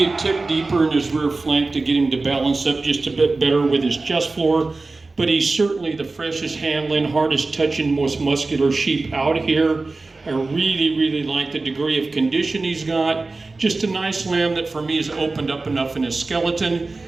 a tick deeper in his rear flank to get him to balance up just a bit better with his chest floor, but he's certainly the freshest handling, hardest touching, most muscular sheep out here. I really like the degree of condition he's got. Just a nice lamb that for me has opened up enough in his skeleton.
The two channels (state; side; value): quieter; left; 3.5 dB